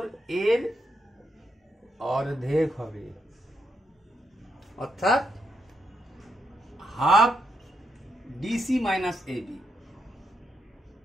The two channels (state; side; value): normal; both; correlation 0.81